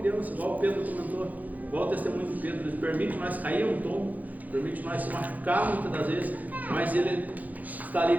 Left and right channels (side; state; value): left; late; 0.080 ms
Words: igual o Pedro comentou, igual o testemunho do Pedro. Ele permite nós cair um tombo, permite nós se machucar muitas das vezes, mas Ele está ali